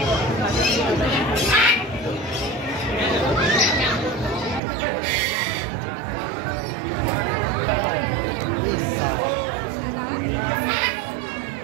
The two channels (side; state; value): left; drops out; at 4.6 s